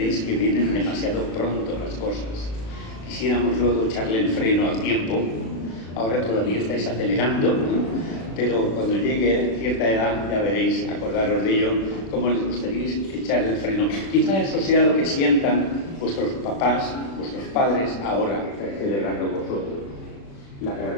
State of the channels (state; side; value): late; right; 36 ms